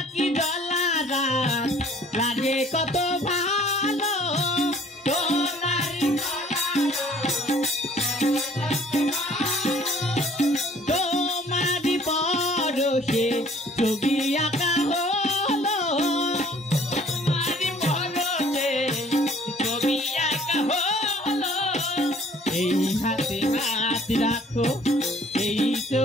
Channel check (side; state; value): both; normal; correlation 0.56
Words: জলা রাত লাগে কত ভালো, তোমার তোমারি পরশে ছবি আঁকা হলো, তোমারি পরশে ছবি আঁকা হলো। এই হাতে হাত রাখো, এই